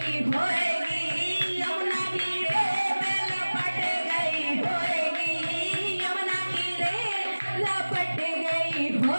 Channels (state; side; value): inverted; both; correlation -1.00